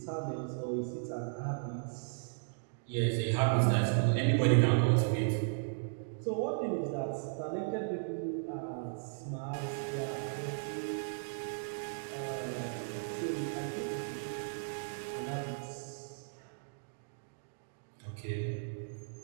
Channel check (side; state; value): left; silent; digital silence